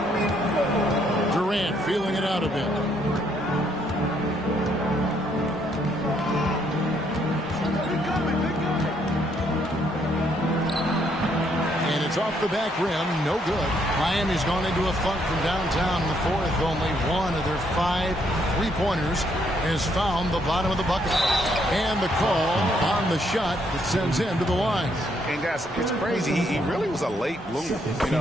Durant feeling it out a bit. It's off the back rim, no good. Miami's gone into a funk from downtown in the fourth. Only one of their 5 three-pointers has found the bottom of the bucket. And the call on the shot that sends him to the line. And guys, it's crazy. He really was a late bloomer. You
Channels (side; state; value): both; normal; correlation 0.71